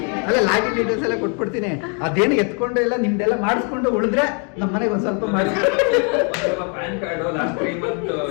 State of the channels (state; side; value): quieter; right; 37.9 dB